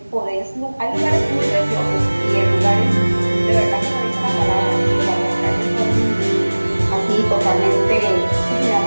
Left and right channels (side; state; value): both; inverted; correlation -1.00